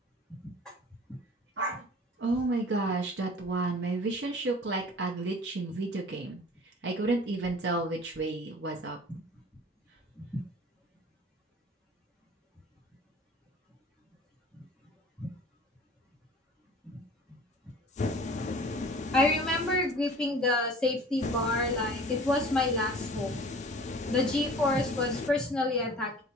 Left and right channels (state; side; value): normal; both; correlation 0.45